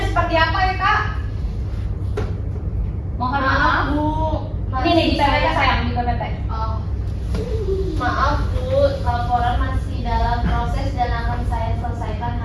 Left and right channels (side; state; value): both; identical; correlation 1.00